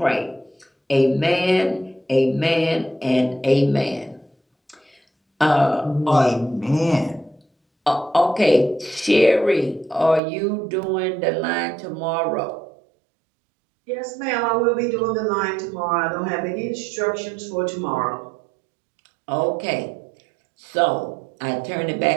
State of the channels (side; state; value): left; drops out; at 10.2 s